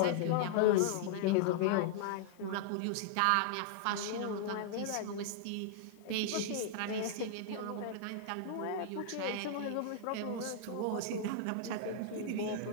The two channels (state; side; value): different; both; correlation -0.01